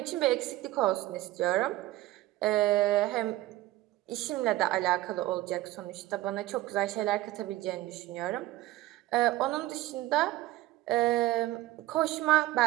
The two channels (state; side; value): quieter; left; 16.7 dB